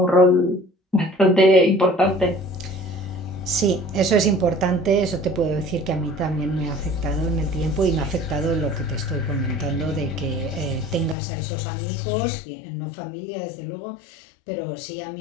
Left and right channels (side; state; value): right; drops out; at 11.2 s